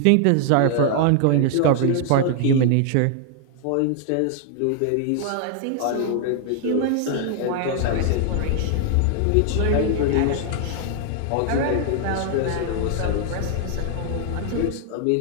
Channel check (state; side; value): different; both; correlation 0.00